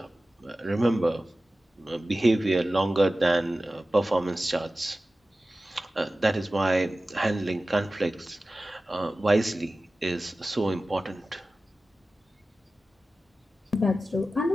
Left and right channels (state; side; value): normal; both; correlation 0.95